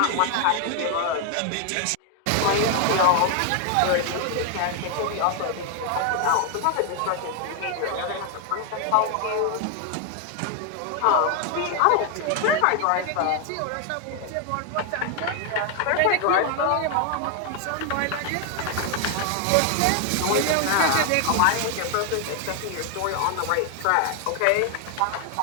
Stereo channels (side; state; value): both; different; correlation 0.00